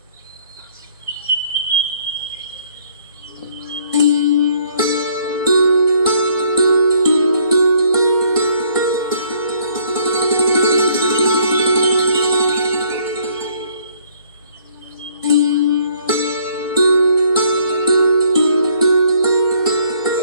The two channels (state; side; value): inverted; both; correlation -0.63